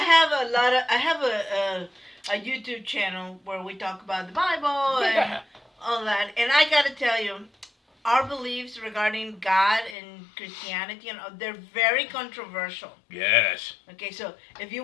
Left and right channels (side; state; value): right; drops out; at 10.0 s